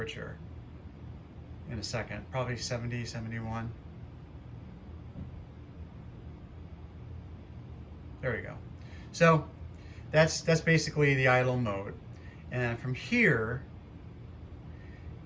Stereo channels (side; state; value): both; identical; correlation 1.00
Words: in a second, probably 70, 71. There we go. So that's basically the idle mode. And from here,